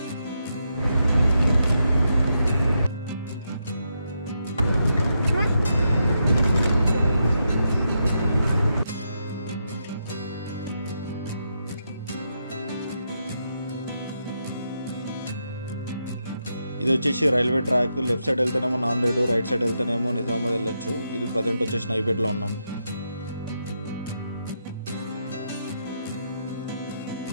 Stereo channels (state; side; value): inverted; both; correlation -0.83